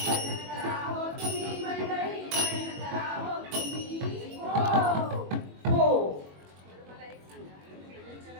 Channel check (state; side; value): late; left; 21 ms